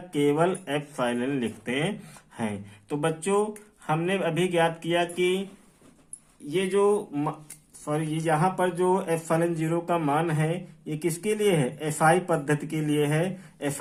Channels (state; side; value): identical; both; correlation 1.00